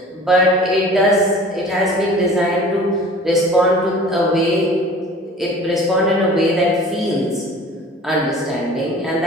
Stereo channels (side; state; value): both; normal; correlation 0.44